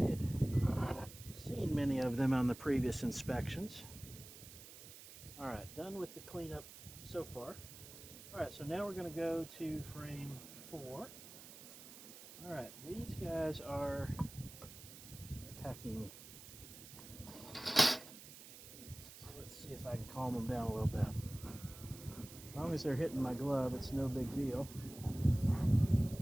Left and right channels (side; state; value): right; noise; hiss, 15 dB below the sound